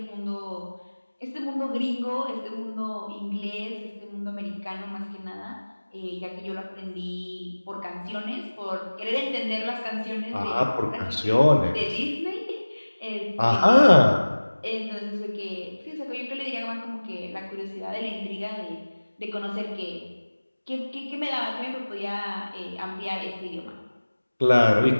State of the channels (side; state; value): both; inverted; correlation -1.00